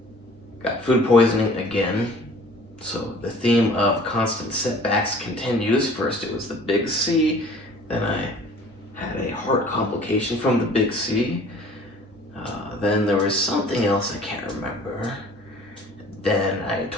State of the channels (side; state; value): both; normal; correlation 0.49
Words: Got food poisoning again. So the theme of constant setbacks continues. First it was the big C, then I had a heart complication from the big C. Then there was something else I can't remember. Then I